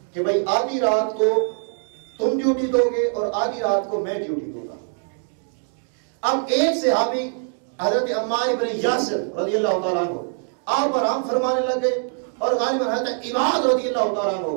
کہ بھائی آدھی رات کو تم ڈیوٹی دو گے اور آدھی رات کو میں ڈیوٹی دوں گا. اب ایک صحابی حضرت عمار بن یاسر رضی اللہ تعالیٰ عنہ آپ آرام فرمانے لگے اور غالباً حضرت عباد رضی اللہ تعالیٰ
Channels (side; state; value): left; silent; 61 dB below the other